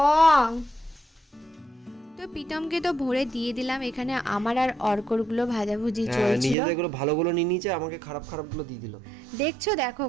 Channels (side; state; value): left; drops out; at 6.6 s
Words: তো প্রীতমকে তো ভরে দিয়ে দিলাম, এখানে আমার আর অর্করগুলো ভাজাভুজি হ্যাঁ, চলছিল। নিজেদের গুলো ভালোগুলো নিয়ে নিয়েছে, আমাকে খারাপগুলো দিয়ে দিল। দেখছো, দেখো